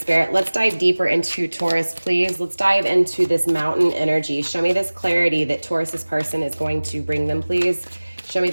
let's dive deeper into Taurus, please. Let's dive into this mountain energy. Show me this clarity that Taurus's person is going to bring them, please. Show me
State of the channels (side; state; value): both; inverted; correlation -1.00